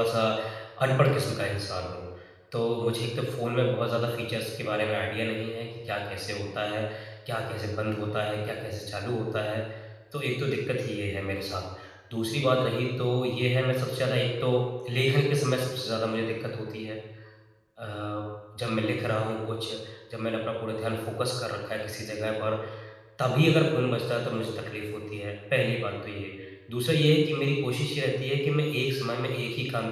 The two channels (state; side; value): identical; both; correlation 1.00